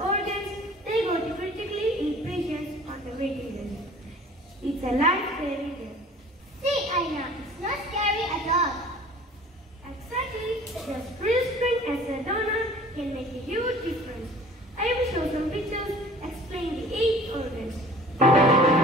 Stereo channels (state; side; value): normal; both; correlation 0.47